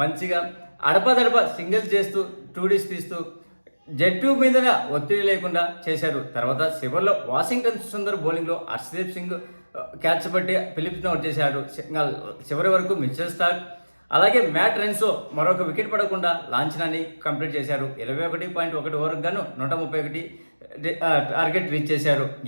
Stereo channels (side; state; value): both; inverted; correlation -1.00